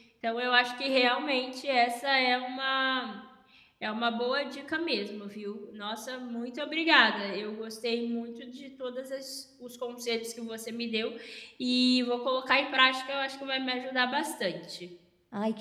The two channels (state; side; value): identical; both; correlation 1.00